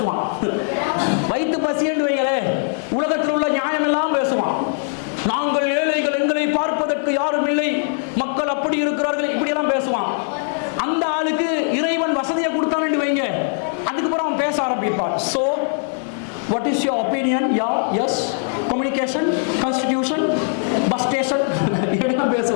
வயிற்று பசி என்று வைங்களே, உலகத்தில் உள்ள நியாயம் எல்லாம் பேசுவான். நாங்கள் ஏழைகள், எங்களை பார்ப்பதற்கு யாரும் இல்லை, மக்கள் அப்படி இருக்கிறார்கள், இப்படியெல்லாம் பேசுவான். அந்த ஆளுக்கு இறைவன் வசதியை கொடுத்தான்னு வைங்க, அதுக்கப்புறம் அவன் பேச ஆரம்பிப்பான். So what is your opinion? Yeah, yes, communication, constitution, bus station, இப்படிலாம்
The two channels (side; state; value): right; silent; digital silence